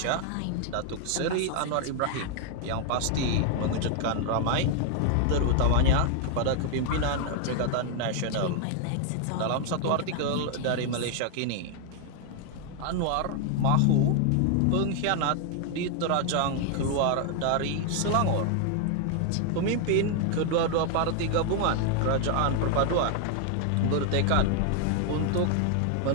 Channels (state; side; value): different; both; correlation 0.00